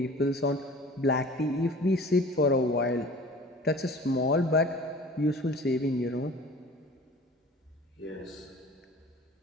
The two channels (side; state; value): both; normal; correlation 0.44